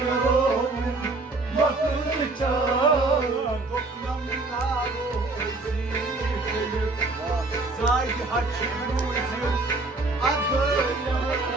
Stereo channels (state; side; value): quieter; left; 3.3 dB